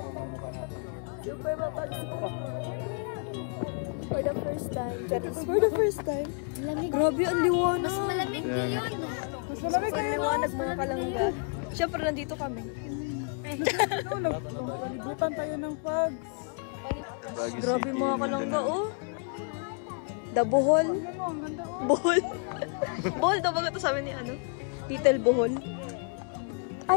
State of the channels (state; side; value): quieter; right; 39.4 dB